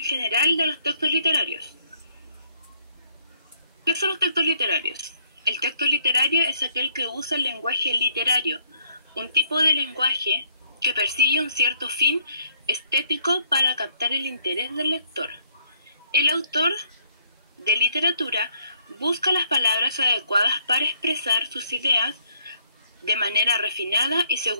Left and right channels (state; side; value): inverted; both; correlation -0.67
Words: general de los textos literarios. ¿Qué son los textos literarios? El texto literario es aquel que usa el lenguaje literario, un tipo de lenguaje que persigue un cierto fin estético para captar el interés del lector. El autor de literatura busca las palabras adecuadas para expresar sus ideas de manera refinada y